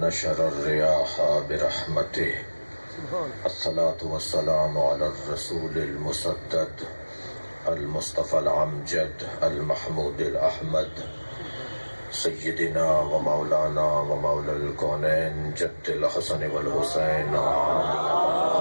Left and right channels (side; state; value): both; inverted; correlation -1.00